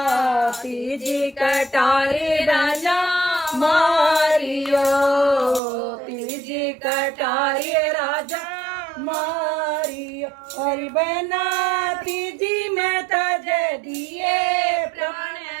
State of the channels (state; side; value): drops out; left; at 5.6 s